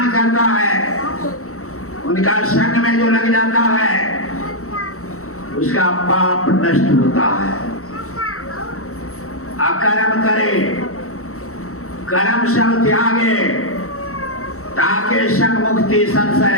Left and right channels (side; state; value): right; late; 0.64 ms